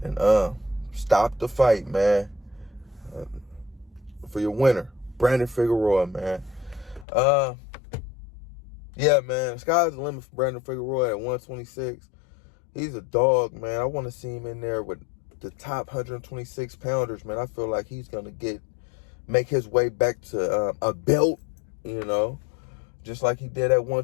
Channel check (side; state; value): right; drops out; at 7.1 s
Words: and stopped the fight, man. For your winner, Brandon Figueroa, man. Yeah, man, sky's the limit for Brandon Figueroa at 126. He's a dog, man. I want to see him in there with the top 126 pounders, man. I feel like he's going to make his way back to a belt, just like he did at